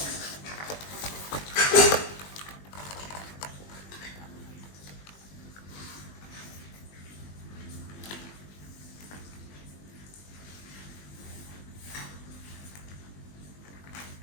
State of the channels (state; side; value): late; right; 20 ms